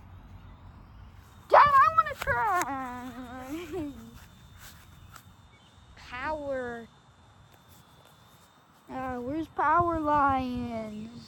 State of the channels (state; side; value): identical; both; correlation 1.00